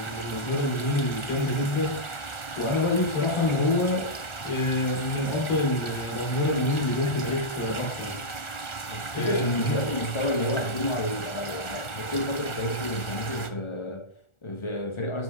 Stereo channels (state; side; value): late; right; 1.4 ms